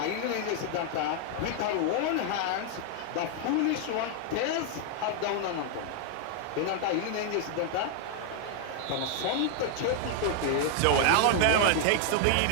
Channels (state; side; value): different; both; correlation 0.00